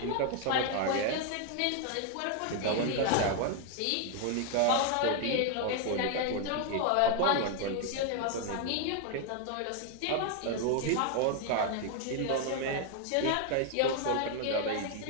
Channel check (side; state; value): both; different; correlation 0.00